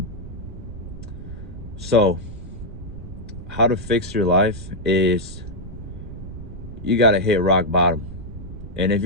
So how to fix your life is you gotta hit rock bottom. And if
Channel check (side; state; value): right; noise; rumble, 13 dB below the sound